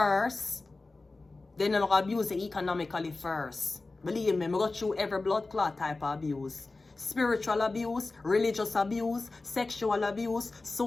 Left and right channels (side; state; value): right; quieter; 3.4 dB